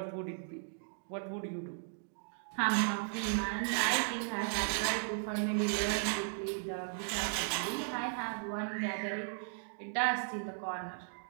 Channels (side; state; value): left; silent; digital silence